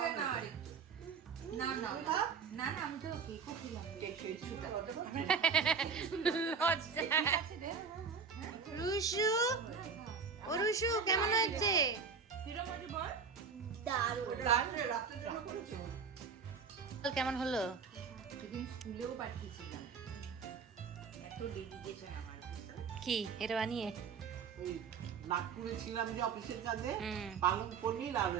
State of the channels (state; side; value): quieter; left; 5.7 dB